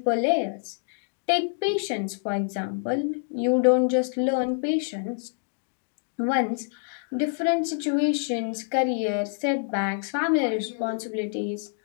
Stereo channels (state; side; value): silent; right; digital silence